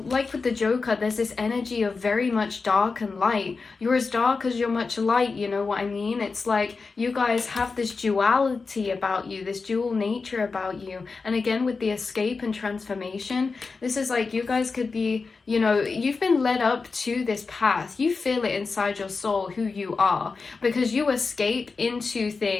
the Joker, there's this energy of very much dark and light. You're as dark as you're much light, you know what I mean? It's like you guys have this duality about you, this dual nature about you. And again, with the escape and transformation, this is like you guys could be, you know, you've been led up to this path. You feel it inside your soul who you are, because you escape into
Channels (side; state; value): right; quieter; 4.4 dB